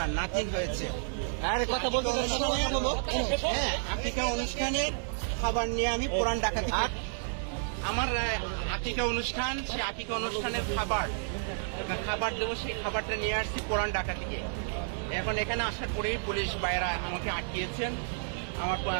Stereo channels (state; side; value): silent; left; digital silence